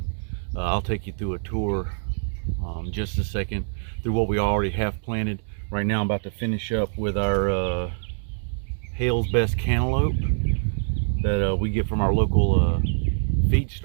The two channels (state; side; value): silent; left; digital silence